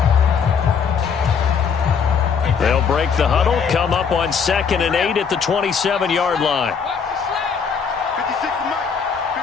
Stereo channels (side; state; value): right; quieter; 6.3 dB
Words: They'll break the huddle, come up on 2nd and 8 at the 27-yard line.